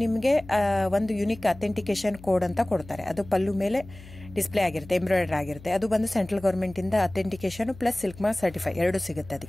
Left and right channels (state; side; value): noise; left; hum, 18 dB below the sound